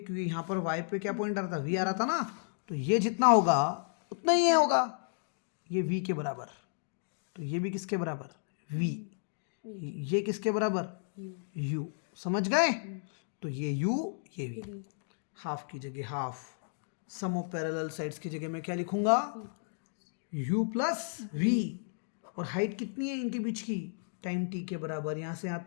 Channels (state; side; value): silent; right; digital silence